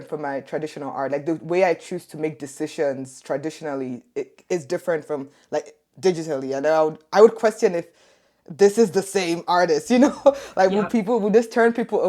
from my traditional art. Like the way I choose to make decisions traditionally, it is different from like digitally. And I would question if this is the same artist, like yeah, would this turn people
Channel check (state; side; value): identical; both; correlation 1.00